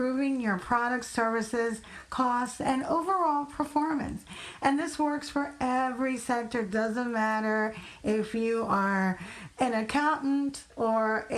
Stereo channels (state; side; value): identical; both; correlation 1.00